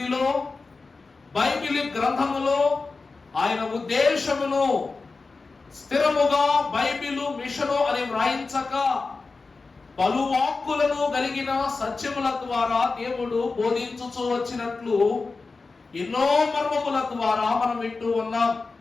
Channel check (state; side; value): quieter; right; 4.0 dB